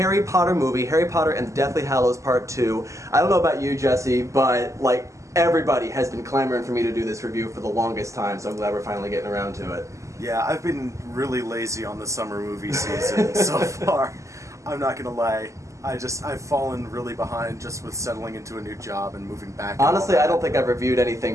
Potter movie, Harry Potter and the Deathly Hallows Part 2. I don't know about you, Jesse, but like everybody has been clamoring for me to do this review for the longest time, so I'm glad we're finally getting around to it. Yeah, I've been really lazy on the summer movie season so far. I'm not gonna lie. I've fallen really behind just with settling into a new job and moving back. Honestly, I don't think I've reviewed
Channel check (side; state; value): left; late; 0.15 ms